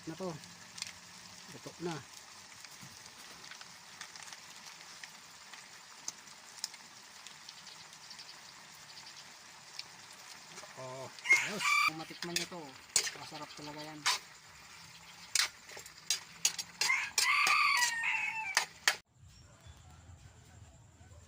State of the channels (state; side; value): identical; both; correlation 1.00